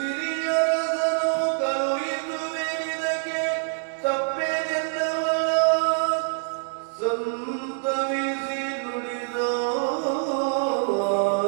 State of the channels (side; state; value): left; silent; digital silence